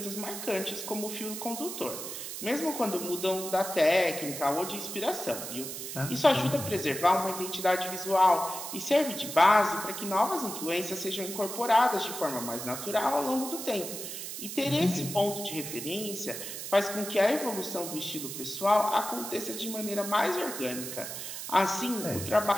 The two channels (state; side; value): noise; right; hiss, 7 dB below the sound